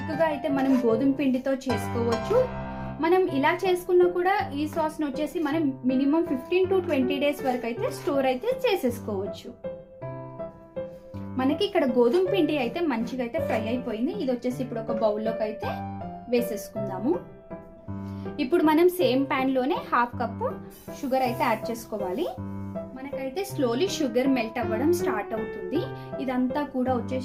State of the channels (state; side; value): identical; both; correlation 1.00